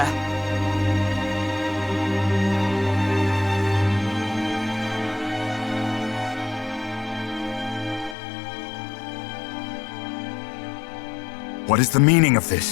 What is the meaning of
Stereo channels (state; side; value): drops out; right; at 8.2 s